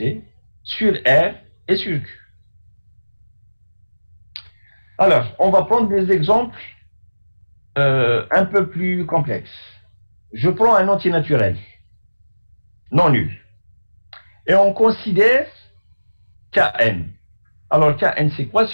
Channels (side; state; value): both; inverted; correlation -1.00